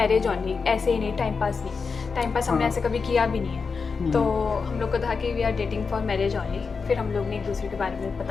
only, ऐसे ही नहीं, टाइम पास नहीं। टाइम पास हमने हाँ। ऐसे कभी किया भी नहीं है। तो हम लोग को था कि we are dating for marriage only. फिर हम लोग ने एक दूसरे के बारे में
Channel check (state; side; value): quieter; right; 5.0 dB